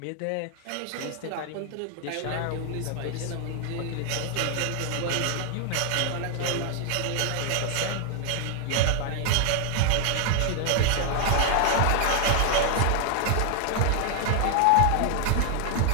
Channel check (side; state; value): both; different; correlation 0.00